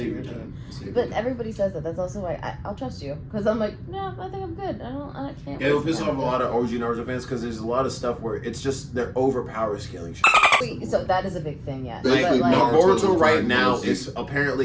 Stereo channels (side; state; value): both; identical; correlation 1.00